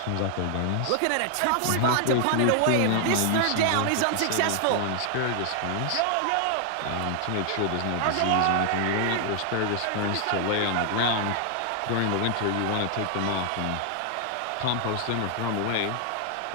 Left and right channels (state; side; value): different; both; correlation 0.00